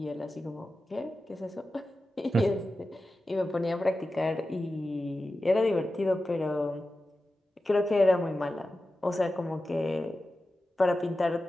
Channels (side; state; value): both; normal; correlation 0.93